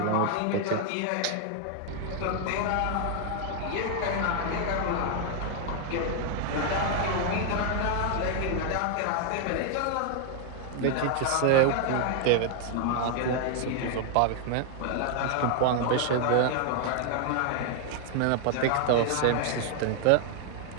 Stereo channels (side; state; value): both; different; correlation 0.00